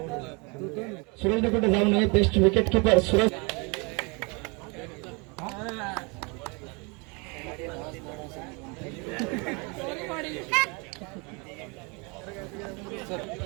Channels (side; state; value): left; quieter; 30.6 dB